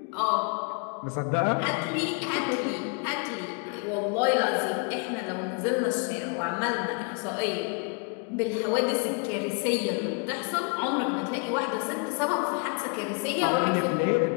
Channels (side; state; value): right; quieter; 35.7 dB